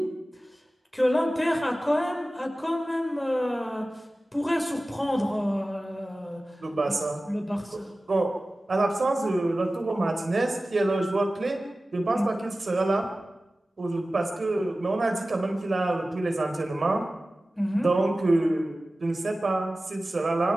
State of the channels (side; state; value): both; normal; correlation 0.96